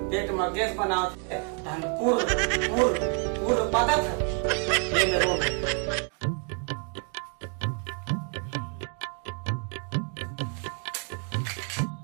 पेट में गैस बनाओ थे, पूर पूर पूर पता था ये में रोग है।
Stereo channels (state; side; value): quieter; left; 39.8 dB